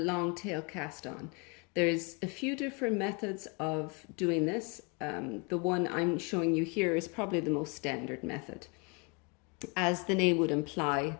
tail cast on. There's a few different methods of doing this. The one I'm showing you here is probably the most standard method. As the name would imply,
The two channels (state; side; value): quieter; right; 31.6 dB